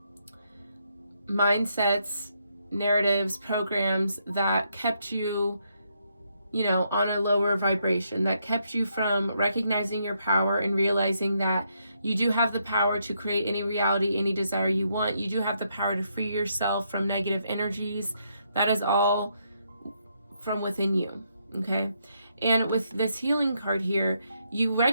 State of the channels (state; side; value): inverted; both; correlation -0.77